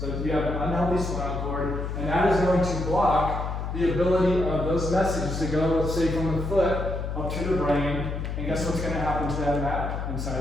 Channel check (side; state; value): left; noise; hum, 4 dB below the sound